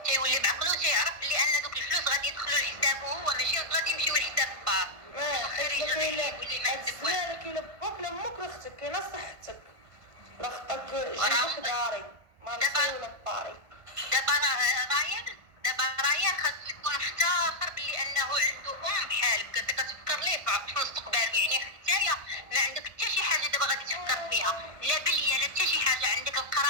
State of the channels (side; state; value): left; late; 1.5 ms